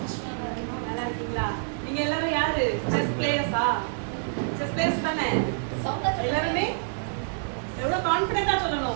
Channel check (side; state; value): left; silent; 60 dB below the other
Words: நல்லா இருக்கீங்களா? நீங்க எல்லாரும் யாரு? செஸ் பிளேயர்ஸா? செஸ் பிளேயர்ஸ் தானே? எல்லாருமே எவ்வளவு கான்ஃபிடென்ட்டா